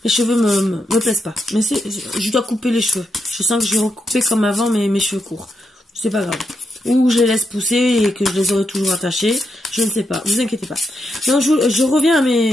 cheveux me plaisent pas. Mais je dois couper les cheveux. Je sens que je vais recouper comme avant mes cheveux courts. C'est pas grave. Ou je les laisse pousser et que je les aurai toujours attachés. Je ne sais pas. Vous inquiétez pas. Donc, je reviens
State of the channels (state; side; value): normal; both; correlation 0.83